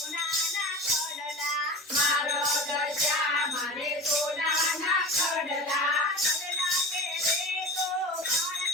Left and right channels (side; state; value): both; normal; correlation 0.32